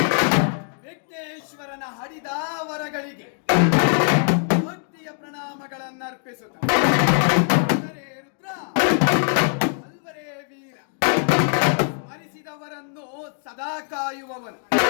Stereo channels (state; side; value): silent; right; 58 dB below the other